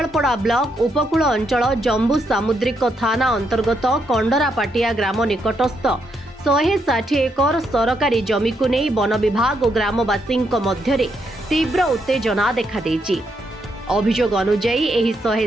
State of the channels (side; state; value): both; normal; correlation 0.78